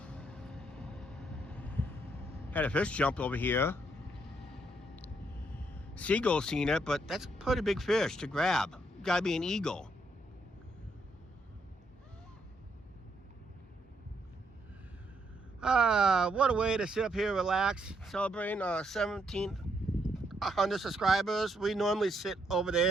Had a fish jump over here. Seagull seen it, but that's a pretty big fish to grab. Gotta be an eagle. What a way to sit up here, relax, celebrating 1,700 subscribers. We normally sit over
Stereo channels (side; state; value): both; normal; correlation 0.74